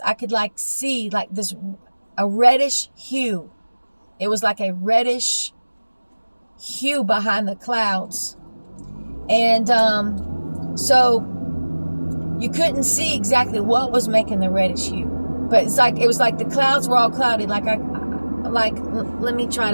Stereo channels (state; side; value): inverted; both; correlation -1.00